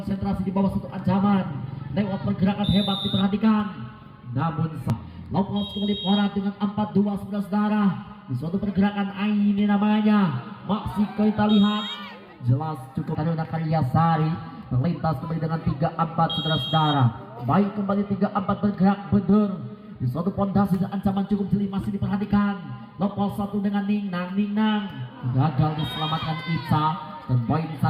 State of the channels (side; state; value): both; identical; correlation 1.00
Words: di bawah satu ancaman lewat pergerakan hebat diperhatikan, namun lepas kembali Porat dengan 4-2 saudara-saudara di suatu pergerakan Aini namanya, masih kita lihat jelas cukup Taruna Karyasari melintas kembali dengan 3-4 saudara-saudara. Baik, kembali 3-4 bergerak bener di suatu pondasi dan ancaman cukup jeli masih diperhatikan. Lepas satu dengan Ningnan gagal diselamatkan Ica dan poin